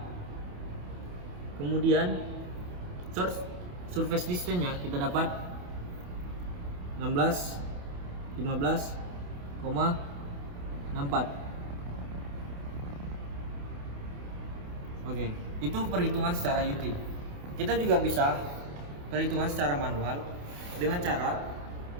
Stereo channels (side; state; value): left; late; 28 ms